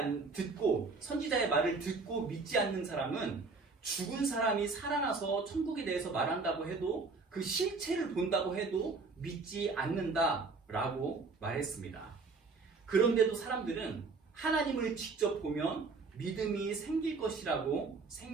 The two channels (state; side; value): quieter; left; 4.1 dB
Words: 선지자의 말을 듣고 믿지 않는 사람은 죽은 사람이 살아나서 천국에 대해서 말한다고 해도 그 실체를 본다고 해도 믿지 않는다라고 말했습니다. 그런데도 사람들은 하나님을 직접 보면 믿음이 생길 것이라고